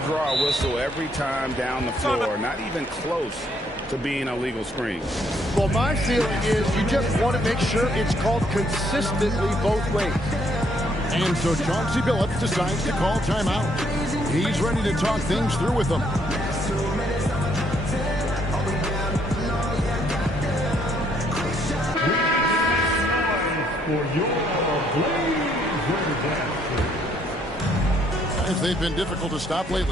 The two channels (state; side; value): normal; both; correlation 0.69